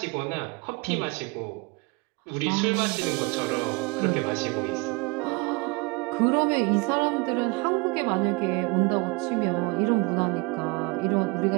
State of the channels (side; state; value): left; quieter; 28.4 dB